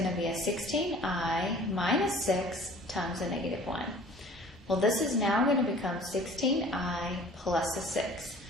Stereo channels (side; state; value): both; normal; correlation 0.48